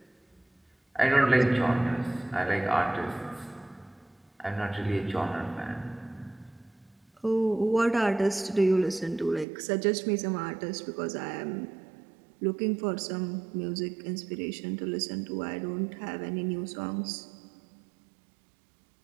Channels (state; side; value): drops out; left; at 9.5 s